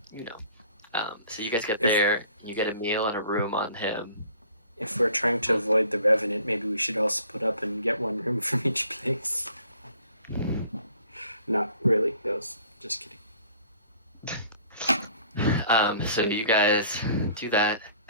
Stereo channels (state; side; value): inverted; both; correlation -0.54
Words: so you guys get there, you get a meal and a room on him. If we're trying to avoid the Revenant, maybe we should all split up and get 1 room from each place. Not really. That was just kidding. So you guys do that.